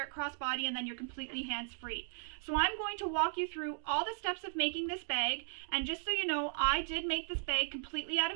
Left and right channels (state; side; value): silent; left; digital silence